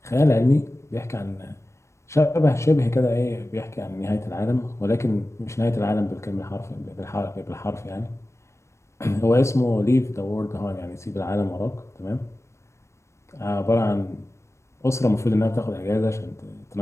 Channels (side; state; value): right; late; 0.13 ms